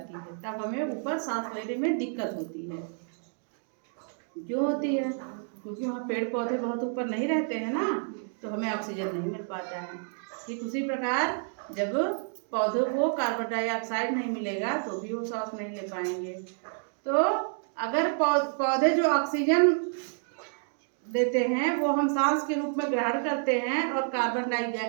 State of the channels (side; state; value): left; silent; 58 dB below the other